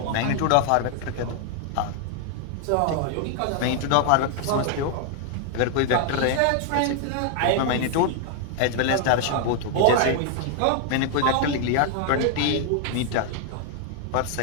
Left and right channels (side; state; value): both; different; correlation 0.00